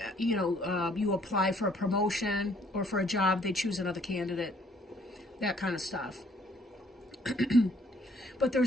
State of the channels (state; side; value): normal; both; correlation 0.63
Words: you apply for a promotion or for a job, they choose another candidate, that kind of stuff. But